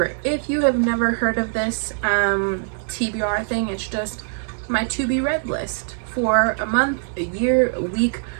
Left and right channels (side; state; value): left; silent; digital silence